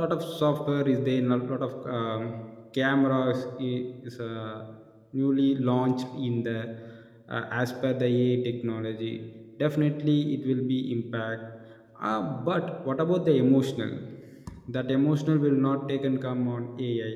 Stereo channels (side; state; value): both; identical; correlation 1.00